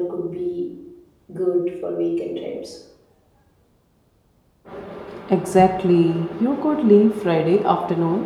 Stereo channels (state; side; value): identical; both; correlation 1.00